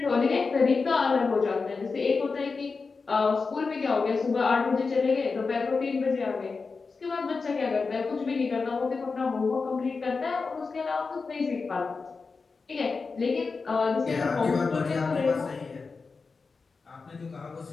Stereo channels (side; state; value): right; quieter; 4.5 dB